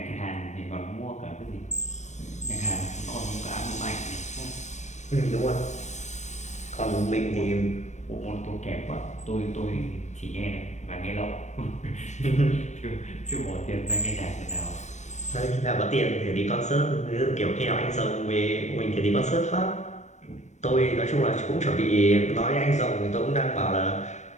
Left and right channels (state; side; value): late; right; 0.34 ms